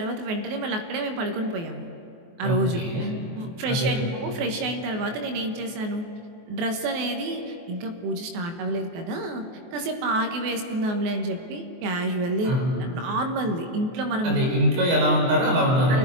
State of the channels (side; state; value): left; late; 23 ms